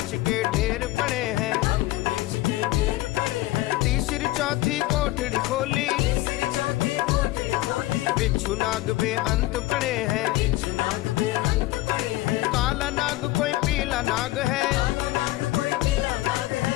के ढेर पड़े हैं, भंग मिर्च के ढेर पड़े हैं, तीसरी चौथी कोठड़ी खोली, तीसरी चौथी कोठड़ी खोली, बिच्छू नाग में अंत पड़े हैं, बिच्छू नाग में अंत पड़े हैं, काला नाग कोई पीला नाग है, काला नाग कोई पीला नाग है,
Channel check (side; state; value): right; quieter; 17.3 dB